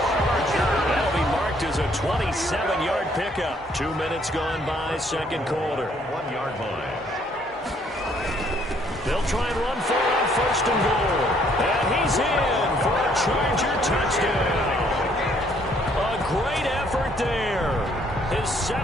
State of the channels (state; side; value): normal; both; correlation 0.65